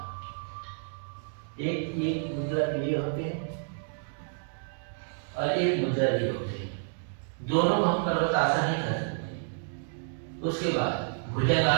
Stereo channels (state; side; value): silent; left; digital silence